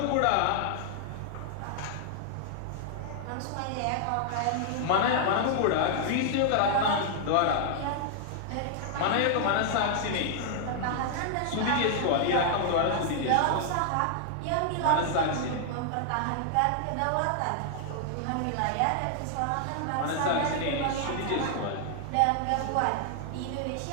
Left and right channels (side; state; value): both; different; correlation -0.01